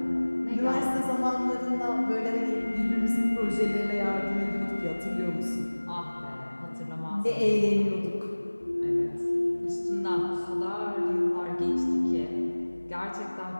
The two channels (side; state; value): both; inverted; correlation -1.00